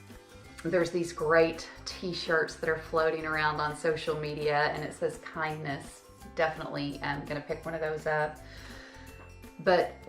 There's these great t-shirts that are floating around on social media and it says kindness. Definitely gonna pick one of those up. But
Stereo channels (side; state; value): both; identical; correlation 1.00